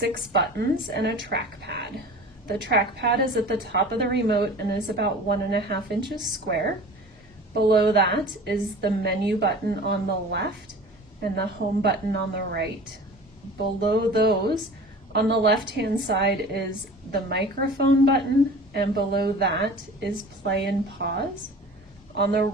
buttons and a trackpad. The trackpad is at the top of the remote and is about 1.5 inches square. Below that is the menu button on the left and the home button on the right. Below those, on the left-hand side is the microphone button, and below that is play and pause. On the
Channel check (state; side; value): normal; both; correlation 0.40